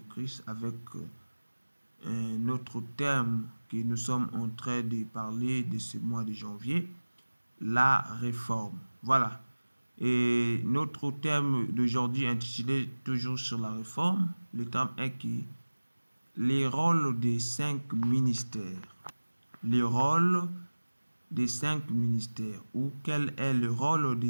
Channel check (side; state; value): both; inverted; correlation -1.00